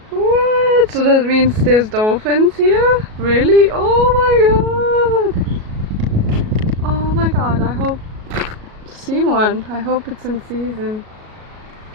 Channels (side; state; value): left; late; 37 ms